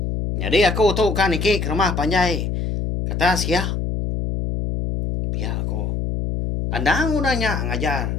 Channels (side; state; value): left; noise; hum, 2 dB below the sound